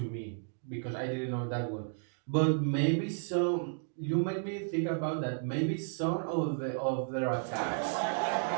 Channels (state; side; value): silent; left; digital silence